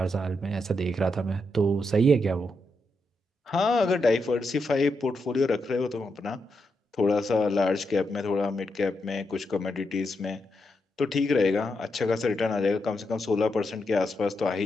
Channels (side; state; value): both; normal; correlation 0.83